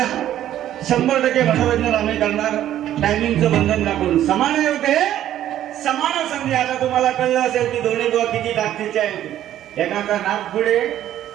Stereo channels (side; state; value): left; quieter; 12.0 dB